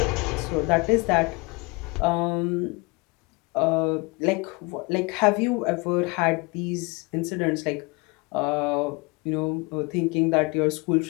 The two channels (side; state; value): right; quieter; 27.7 dB